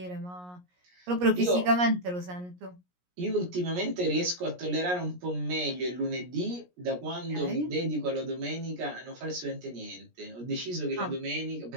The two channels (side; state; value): left; late; 17 ms